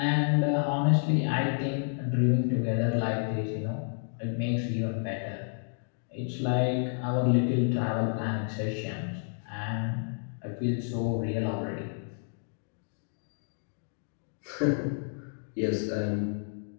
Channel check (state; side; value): silent; right; digital silence